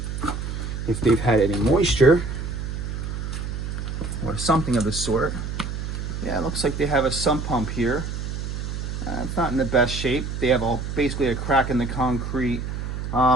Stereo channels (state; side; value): noise; right; hum, 5 dB below the sound